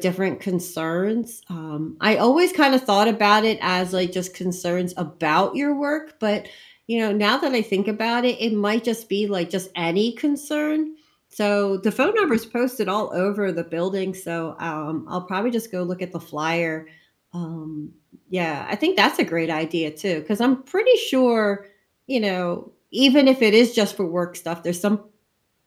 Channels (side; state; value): both; identical; correlation 1.00